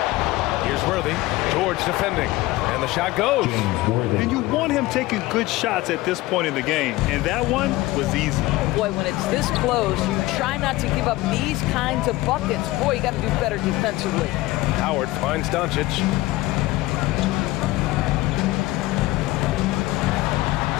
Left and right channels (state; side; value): quieter; right; 18.6 dB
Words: Here's Worthy. George defending. And the shot goes. And you want him taking good shots at this point in the game. And that one was easy. Boy, when it's this close, you try not to give up these kinds of buckets. Boy, you got to do better defensively. Howard finds Doncic.